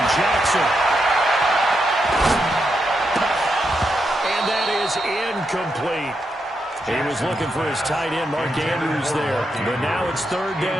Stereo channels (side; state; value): both; normal; correlation 0.83